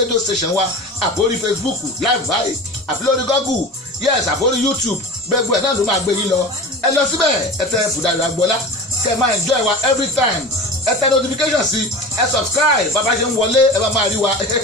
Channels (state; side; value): normal; both; correlation 0.33